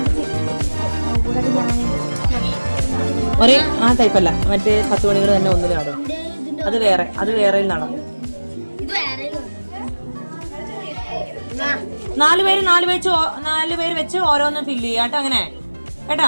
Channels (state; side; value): inverted; both; correlation -1.00